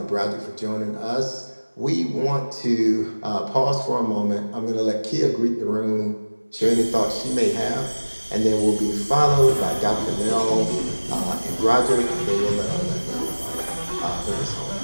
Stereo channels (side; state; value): both; inverted; correlation -1.00